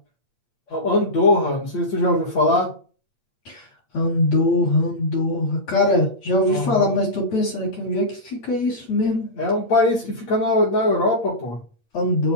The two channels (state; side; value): late; right; 8.6 ms